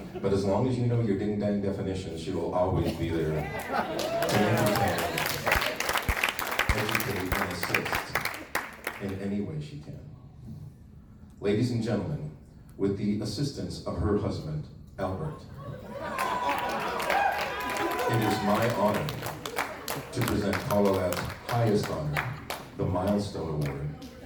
But as long as you know your ding-dang definitions, she will always be there to entertain, educate, and assist in any way she can. Ladies and gentlemen, with the assistance of her husband, Albert, it is my honor to present Colorad's highest honor, the Milestone Award,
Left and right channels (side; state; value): both; identical; correlation 1.00